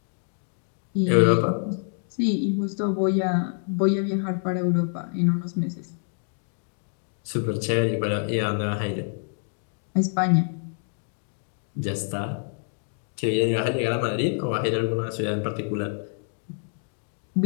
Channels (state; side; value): silent; right; 61 dB below the other